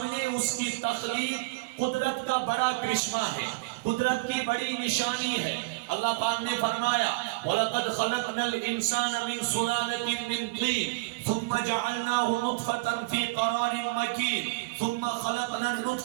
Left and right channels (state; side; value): quieter; left; 25.3 dB